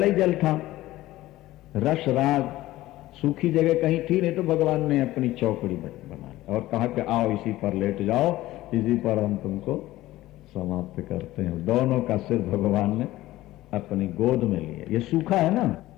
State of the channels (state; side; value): quieter; right; 16.5 dB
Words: ही जल था, रस राग, सूखी जगह कहीं थी नहीं, तो भगवान ने अपनी चौकड़ी बना ली और कहा कि आओ इसी पर लेट जाओ, इसी पर हम तुमको समाप्त करते हैं। दोनों का सिर भगवान ने अपनी गोद में लिया। ये सूखा है ना,